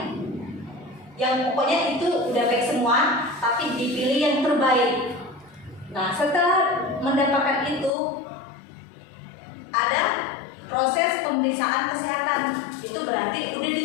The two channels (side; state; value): right; drops out; at 7.9 s